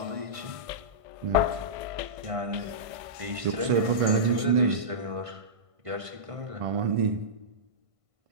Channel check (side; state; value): left; late; 1.5 ms